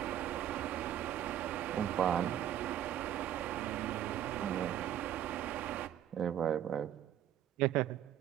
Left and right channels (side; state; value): left; quieter; 11.1 dB